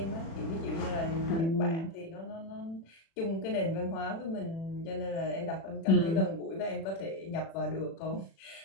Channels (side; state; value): right; late; 36 ms